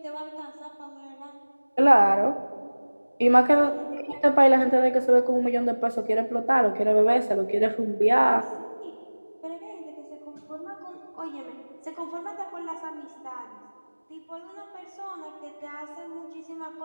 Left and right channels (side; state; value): both; inverted; correlation -1.00